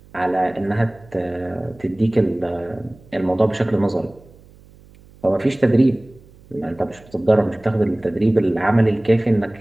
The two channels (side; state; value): right; noise; hum, 25 dB below the sound